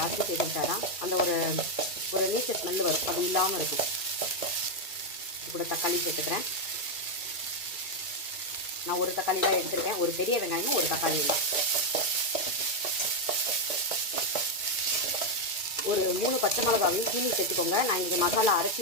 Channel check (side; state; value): right; late; 2.3 ms